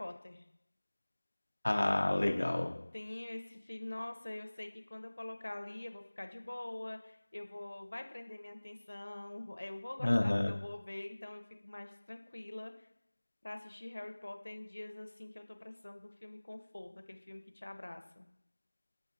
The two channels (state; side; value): inverted; both; correlation -1.00